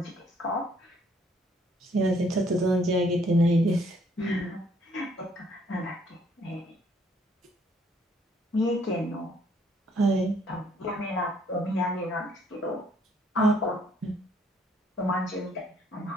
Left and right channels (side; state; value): both; normal; correlation 0.65